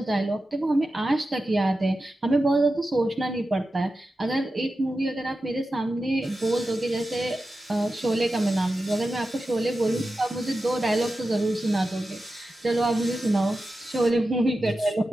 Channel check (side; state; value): both; normal; correlation 0.92